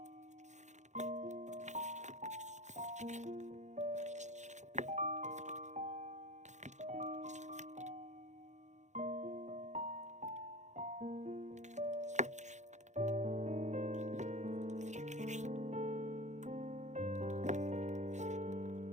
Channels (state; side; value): late; left; 0.34 ms